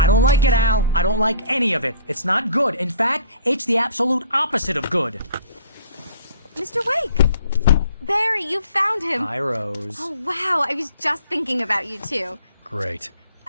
don't like it, Al. I don't like any of it. It's not good. In fact, it's the absolute opposite of good. Mr. Wake! Barry, you found him! Hi, Rose. Oh, wow. I was just thinking about you, too. Great.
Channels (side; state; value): both; inverted; correlation -0.50